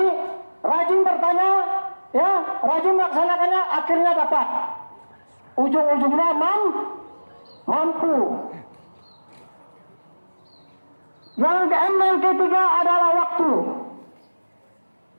rajin bertanya, ya, rajin melaksanakannya, akhirnya dapat. Ujung-ujungnya mampu. Yang ketiga adalah waktu.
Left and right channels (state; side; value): inverted; both; correlation -1.00